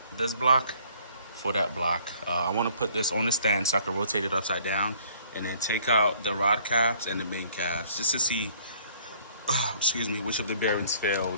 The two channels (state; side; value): inverted; both; correlation -0.59